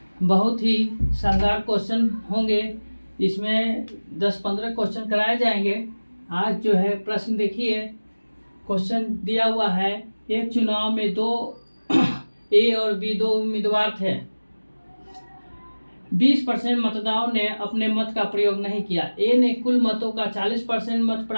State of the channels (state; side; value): inverted; both; correlation -1.00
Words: बहुत ही शानदार क्वेश्चन होंगे। इसमें 10-15 क्वेश्चन कराए जाएंगे। आज जो है प्रश्न देखिए, क्वेश्चन दिया हुआ है। एक चुनाव में दो ए और बी दो उम्मीदवार थे। 20% मतदाताओं ने अपने मत का प्रयोग नहीं किया। ए ने कुल मतों का 40% मत